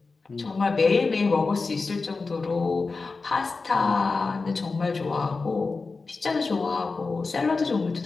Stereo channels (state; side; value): quieter; right; 4.1 dB